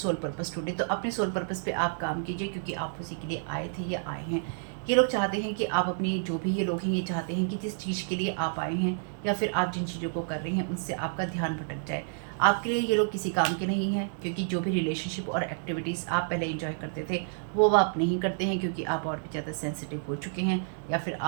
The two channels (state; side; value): silent; left; digital silence